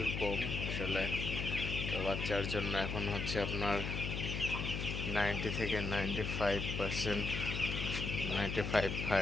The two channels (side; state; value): left; noise; hum, 3 dB below the sound